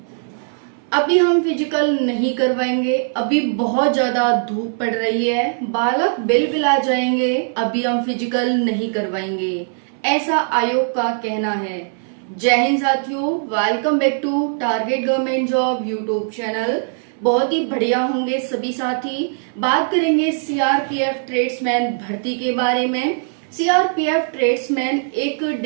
अभी हम फिजिकल नहीं करवाएंगे, अभी बहुत ज्यादा धूप पड़ रही है, बालक बिलबिला जाएंगे, अभी हम फिजिकल नहीं करवाएंगे, ऐसा आयोग का कहना है। जय हिंद साथियों, welcome back to target government job YouTube channel. बहुत ही बढ़िया होंगे सभी साथी। बात करेंगे सीआरपीएफ ट्रेड्समैन भर्ती के बारे में। सीआरपीएफ ट्रेड्समैन एक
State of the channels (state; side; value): silent; left; 65 dB below the other